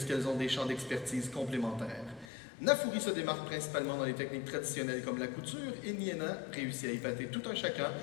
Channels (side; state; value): right; drops out; at 2.2 s